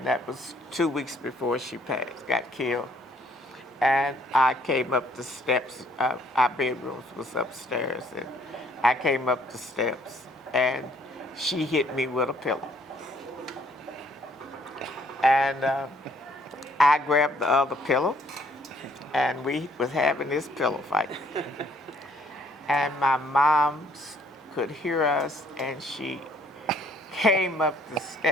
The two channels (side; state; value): both; normal; correlation 0.64